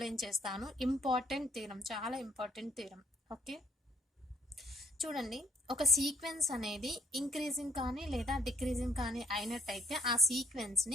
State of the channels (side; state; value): both; normal; correlation 0.65